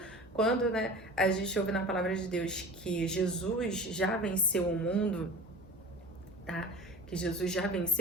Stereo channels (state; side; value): normal; both; correlation 0.37